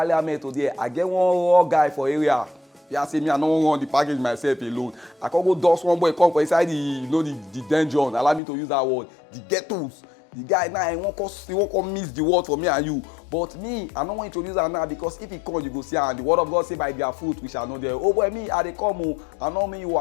today, I get one raw guy for area. Yeah, say me I no run the package myself alone. I can go dust one boy come for inside the dungeon. Allow me to use that word. The ghettos. The guy now he won't come miss the word for me and you. But me, I don't want to introduce that now because if he come, you go see and the word of God say by their fruit we shall know them. Oh boy, me I dey come o. I know me you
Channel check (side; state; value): right; drops out; at 8.4 s